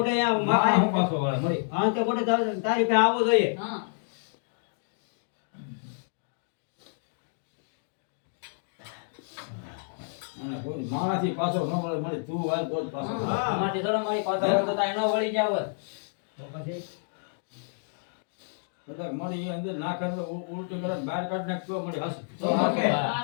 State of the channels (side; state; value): right; silent; digital silence